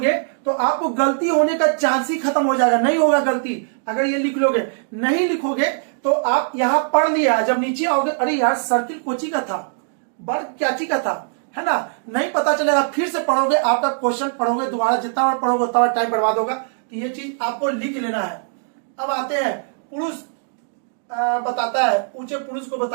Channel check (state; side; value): silent; left; digital silence